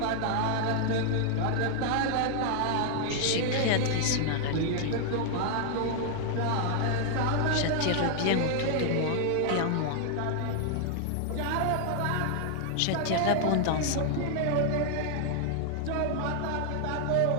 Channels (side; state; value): both; different; correlation 0.00